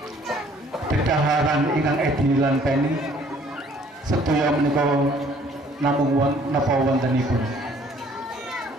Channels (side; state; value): both; normal; correlation 0.58